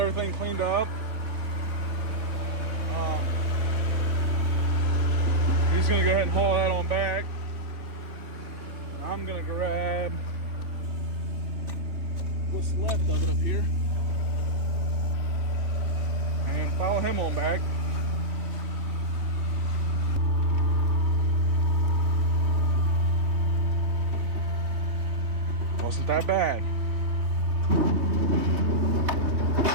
cleaned up. He's gonna go ahead and pull that on back. And I'm gonna grab what's left of it up here and follow him on back. Wasn't that bad.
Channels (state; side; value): late; left; 3.2 ms